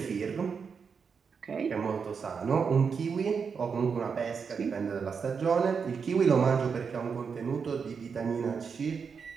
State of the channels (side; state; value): left; quieter; 5.9 dB